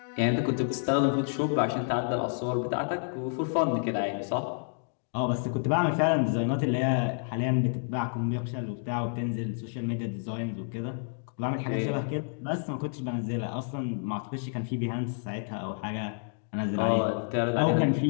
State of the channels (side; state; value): right; silent; digital silence